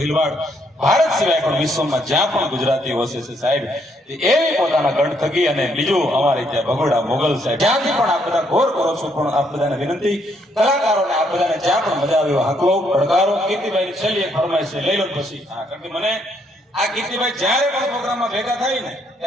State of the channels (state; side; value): normal; both; correlation 0.72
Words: ભારત સિવાય પણ વિશ્વમાં જ્યાં પણ ગુજરાતી વસે છે સાહેબ એવી પોતાના ગઢ થકી અને બીજું અમારે ત્યાં ભગોડા મોગલ સાહેબ જ્યાંથી પણ આપ બધા ઘોર કરો છો પણ આપ બધાને વિનંતી કલાકારોને આપ બધાને જ્યાં પણ મજા આવે હાકલો પડકારો કીર્તિભાઈ છેલ્લી એક ફરમાઈશ છે લઈ લો પછી હા કારણ કે મને આ કીર્તિભાઈ જ્યારે પણ પ્રોગ્રામમાં ભેગા થાય ને